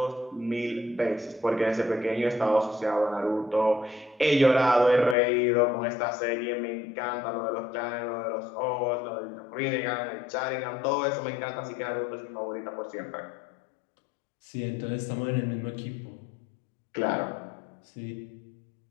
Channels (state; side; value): drops out; right; at 5.2 s